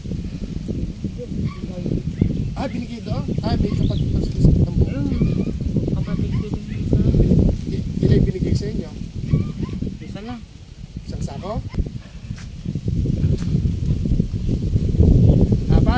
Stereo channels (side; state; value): both; identical; correlation 1.00